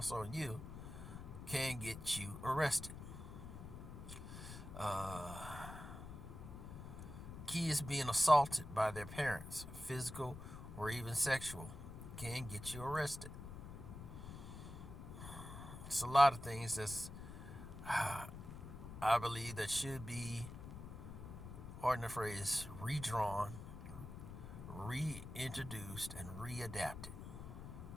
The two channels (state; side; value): noise; left; rumble, 10 dB below the sound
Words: on you, can get you arrested. Kids being assaulted by their parents, physical or even sexual, can get you arrested. It's a lot of things that's, I believe, that should be, pardon the phrase, redrawn, reintroduced, and readapted.